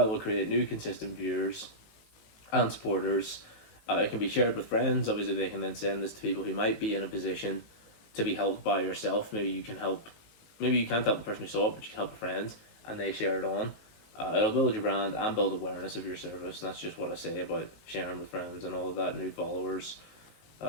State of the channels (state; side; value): late; right; 18 ms